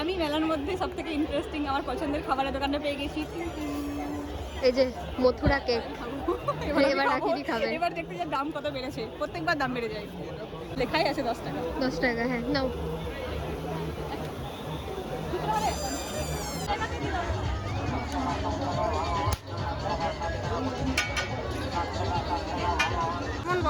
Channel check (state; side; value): identical; both; correlation 1.00